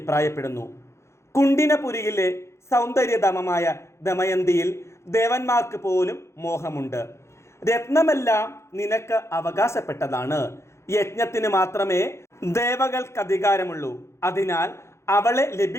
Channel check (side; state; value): right; late; 0.13 ms